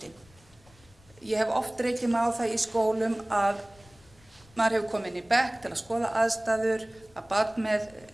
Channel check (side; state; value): left; noise; rumble, 27 dB below the sound